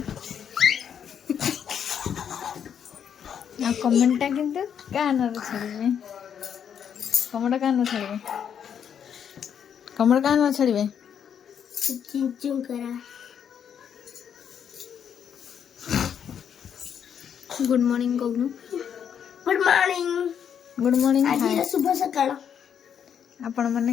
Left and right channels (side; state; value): right; quieter; 8.3 dB